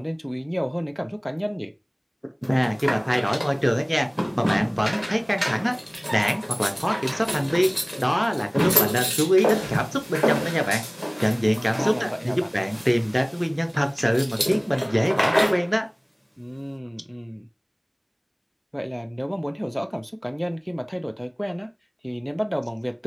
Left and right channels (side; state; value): both; identical; correlation 1.00